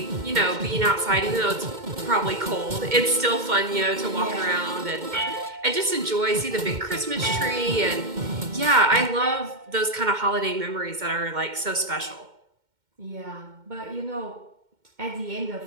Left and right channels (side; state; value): left; late; 2.1 ms